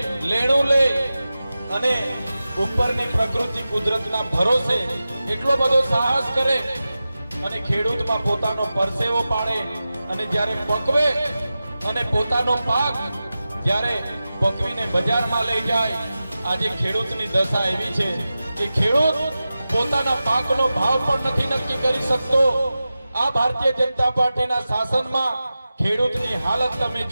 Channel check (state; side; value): inverted; both; correlation -0.94